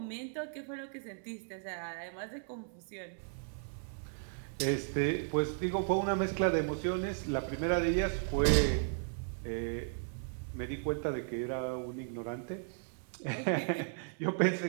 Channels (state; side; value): silent; left; 54 dB below the other